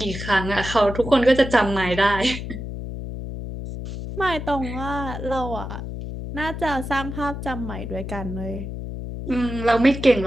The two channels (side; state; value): left; noise; hum, 7 dB below the sound